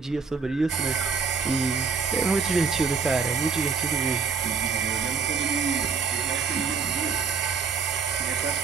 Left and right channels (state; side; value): quieter; left; 5.6 dB